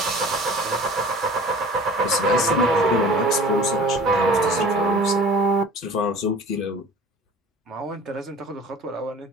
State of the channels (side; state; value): both; normal; correlation 0.44